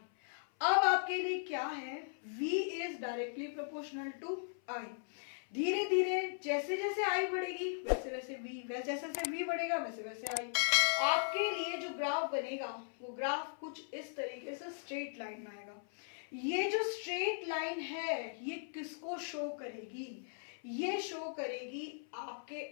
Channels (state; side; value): silent; right; 52 dB below the other